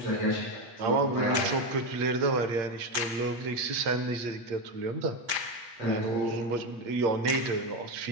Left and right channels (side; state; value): left; late; 8.4 ms